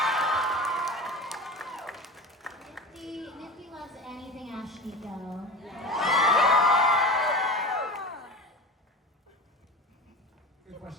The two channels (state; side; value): normal; both; correlation 0.31